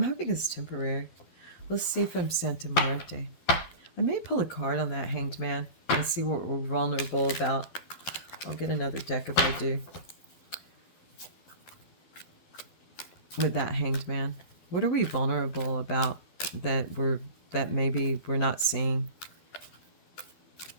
hoping it's temporary. Let's see if I'm Santa Muerte. I may pull a card on that Hanged Man and see what we're vulnerable about. I'll get another deck if I do. With that Hanged Man. What are we vulnerable about that maybe we're not seeing?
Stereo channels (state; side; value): late; right; 11 ms